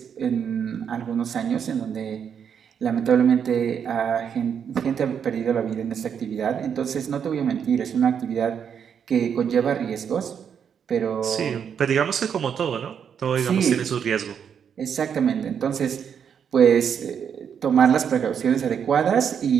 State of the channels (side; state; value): left; quieter; 7.7 dB